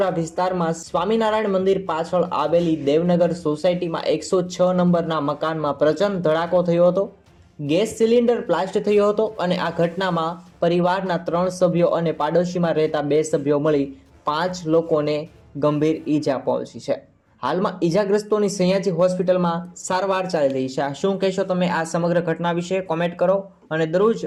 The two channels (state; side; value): identical; both; correlation 1.00